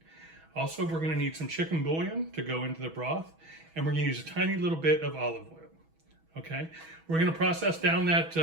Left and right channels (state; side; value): late; left; 6.2 ms